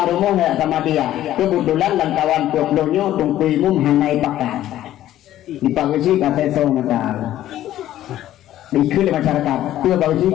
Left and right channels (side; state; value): right; quieter; 13.1 dB